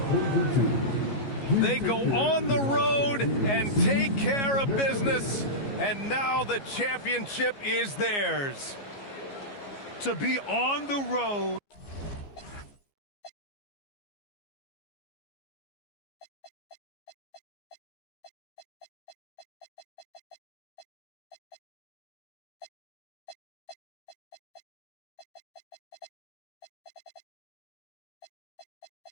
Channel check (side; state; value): right; late; 15 ms